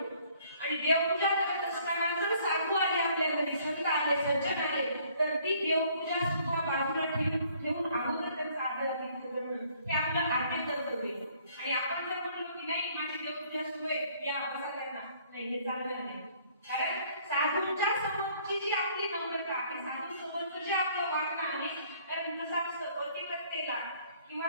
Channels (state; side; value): inverted; both; correlation -0.61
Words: आणि देवपूजा करत असताना जर साधू आले आपल्या घरी, संत आले, सज्जन आले, तर ती देवपूजा सुद्धा बाजूला ठेवून अगोदर त्यांचा आदरातिथ्य करणं हे आपलं आद्य कर्तव्य आहे. आणि आपण जर म्हणलो की नाही माझी देवपूजा सुरू आहे, या बसा त्यांना, नाही, हे चालणार नाही. कारण साधूच्या समोरची जी आपली नम्रता आहे, साधू समोरचं जे आपलं वागणं आहे, कारण कसं असतं, पतिव्रतेला